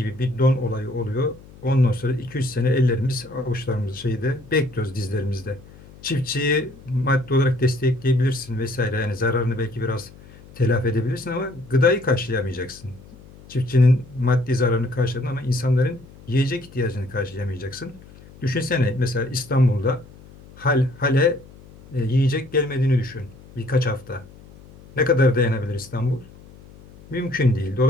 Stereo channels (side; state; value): left; noise; hum, 22 dB below the sound